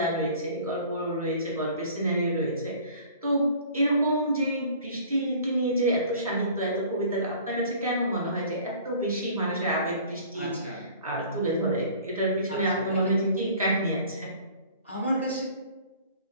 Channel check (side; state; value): both; inverted; correlation -0.48